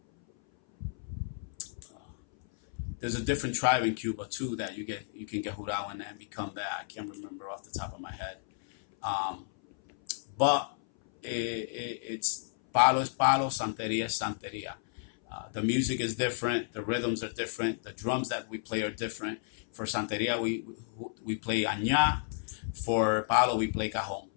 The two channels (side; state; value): right; silent; 56 dB below the other